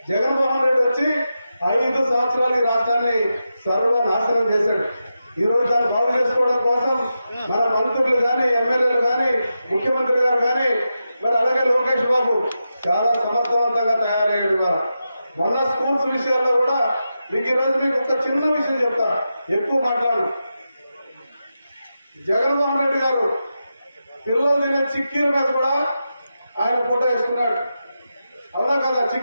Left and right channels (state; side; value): inverted; both; correlation -0.89